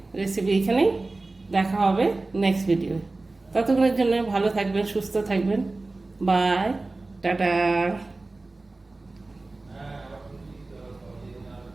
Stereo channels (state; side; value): quieter; left; 3.2 dB